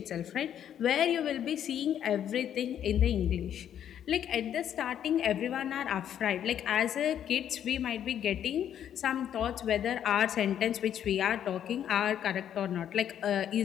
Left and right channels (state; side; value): quieter; right; 9.8 dB